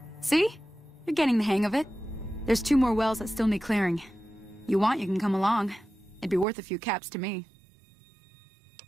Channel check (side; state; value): left; drops out; at 6.5 s